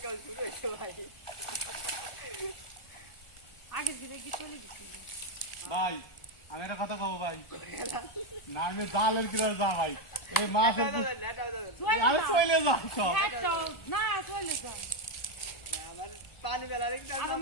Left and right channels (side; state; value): right; late; 1.4 ms